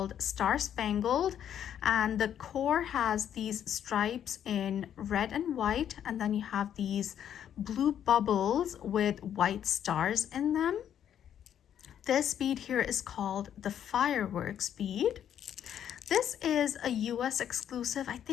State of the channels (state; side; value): quieter; right; 9.7 dB